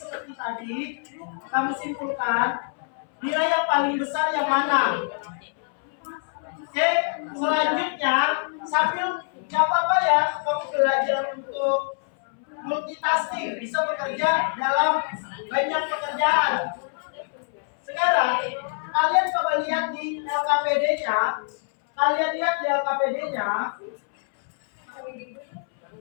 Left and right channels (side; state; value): right; silent; 62 dB below the other